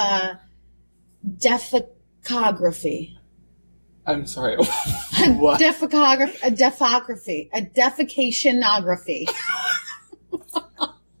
defecography. I'm sorry. What? A defecationography.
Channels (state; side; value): inverted; both; correlation -1.00